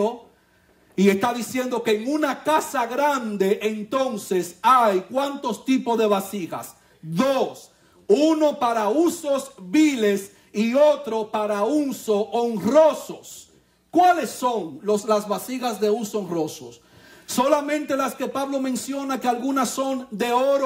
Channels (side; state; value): both; identical; correlation 1.00